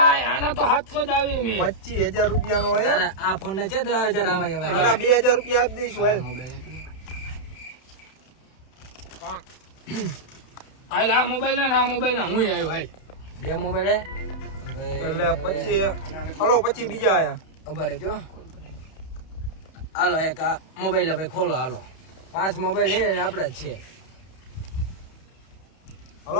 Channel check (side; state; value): right; late; 31 ms